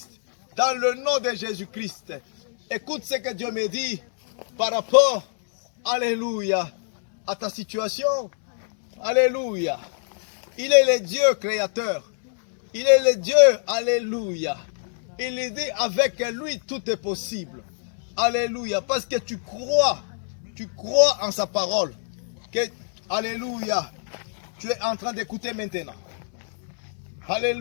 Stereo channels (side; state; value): right; silent; digital silence